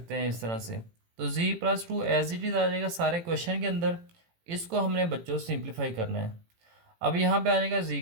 हैं इस तरह से। तो z plus 2 as it is आ जाएगा सारे क्वेश्चन के अंदर। इसको हमने बच्चों सिंप्लीफाई करना है। अब यहाँ पे आ जाएगा जी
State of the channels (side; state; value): left; late; 18 ms